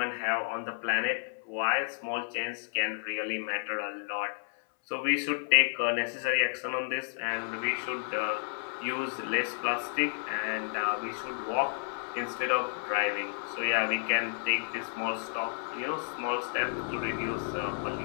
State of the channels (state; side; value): silent; right; 57 dB below the other